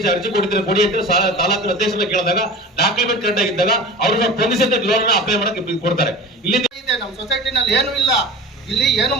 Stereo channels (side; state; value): both; normal; correlation 0.35